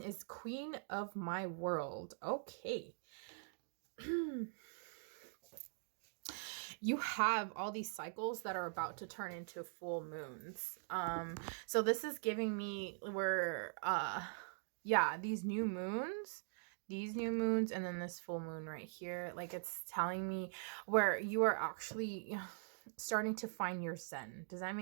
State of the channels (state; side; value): silent; left; digital silence